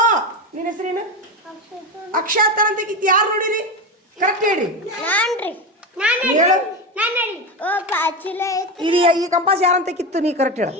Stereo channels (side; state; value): both; normal; correlation 0.18